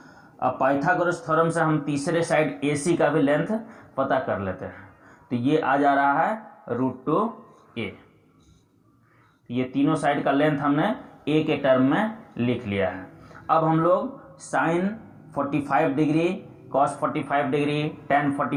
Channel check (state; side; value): identical; both; correlation 1.00